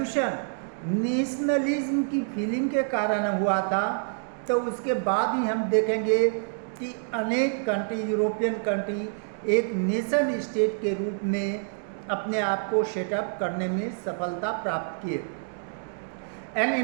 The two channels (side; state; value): left; silent; digital silence